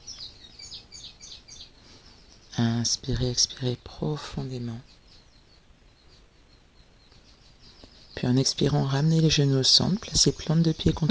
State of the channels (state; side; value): identical; both; correlation 1.00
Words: Inspirez, expirez profondément. Puis en expirant, ramenez les genoux au centre, placez plante de pied